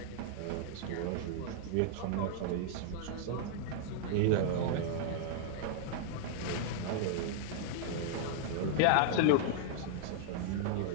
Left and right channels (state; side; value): different; both; correlation -0.01